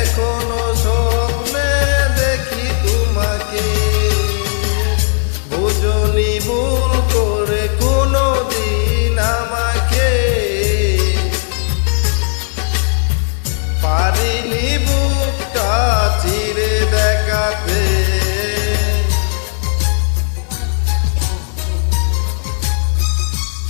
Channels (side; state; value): right; silent; 62 dB below the other